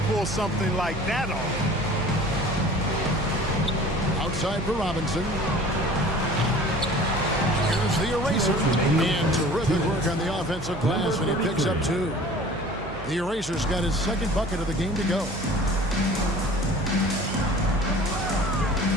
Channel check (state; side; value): noise; right; hum, 14 dB below the sound